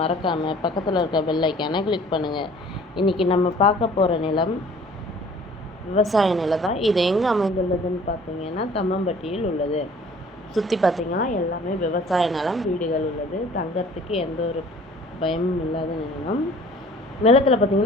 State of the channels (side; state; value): both; normal; correlation 0.51